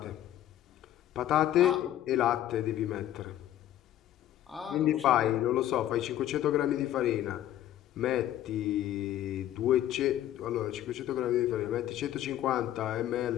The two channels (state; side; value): quieter; right; 12.5 dB